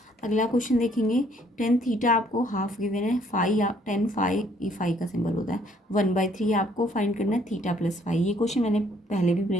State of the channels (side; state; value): both; normal; correlation 0.64